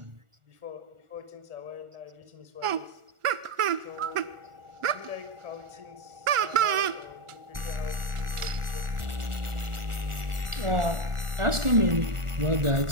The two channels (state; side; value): late; left; 1.4 ms